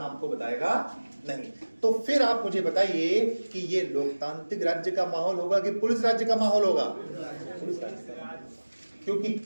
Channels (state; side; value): inverted; both; correlation -1.00